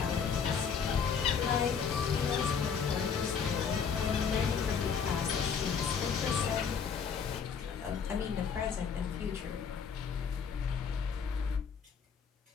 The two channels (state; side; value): quieter; right; 6.5 dB